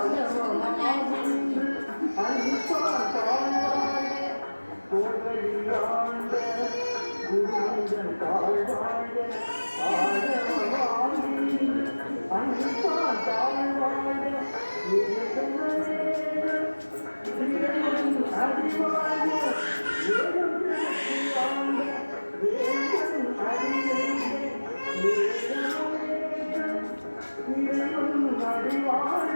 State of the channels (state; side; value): inverted; both; correlation -1.00